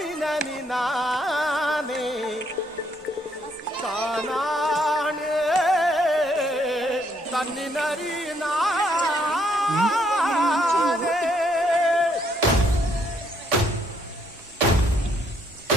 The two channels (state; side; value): normal; both; correlation 0.70